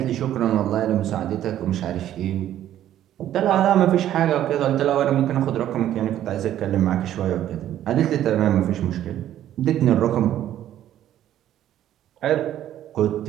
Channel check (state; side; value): quieter; left; 11.9 dB